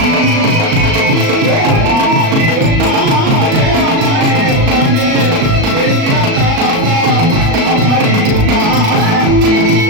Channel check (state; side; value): late; left; 37 ms